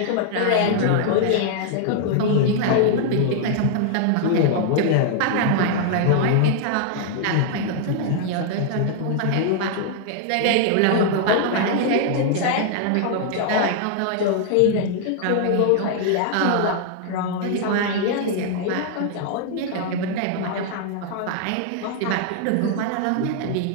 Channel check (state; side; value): different; both; correlation 0.00